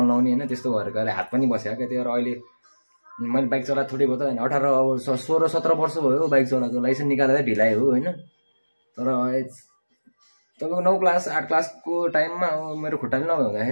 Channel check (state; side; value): inverted; both; correlation -1.00